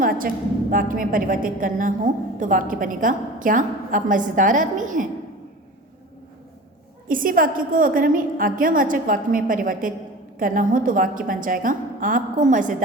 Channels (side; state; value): both; normal; correlation 0.37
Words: वाक्य में परिवर्तित करना हो तो वाक्य बनेगा क्या आप मज़ेदार आदमी हैं। इसी वाक्य को अगर हमें आज्ञावाचक वाक्य में परिवर्तित करना हो तो वाक्य बन जाएगा आपको